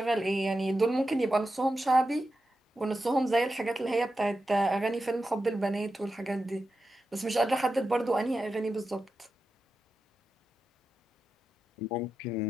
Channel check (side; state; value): both; normal; correlation 0.90